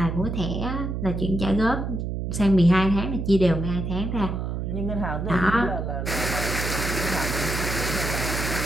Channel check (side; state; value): right; noise; hum, 3 dB below the sound